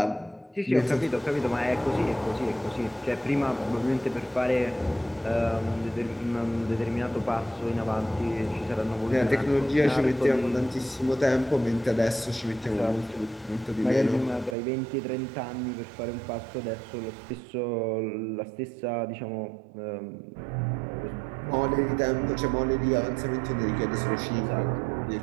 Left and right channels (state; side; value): drops out; left; at 14.6 s